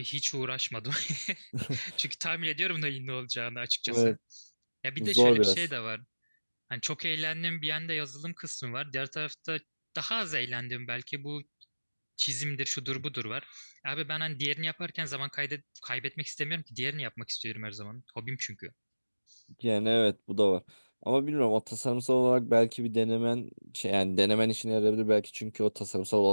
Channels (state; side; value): inverted; both; correlation -1.00